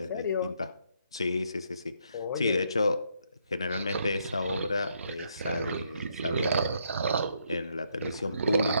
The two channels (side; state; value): both; inverted; correlation -0.73